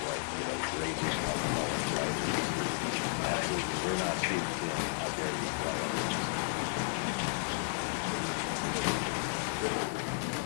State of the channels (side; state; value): right; silent; 56 dB below the other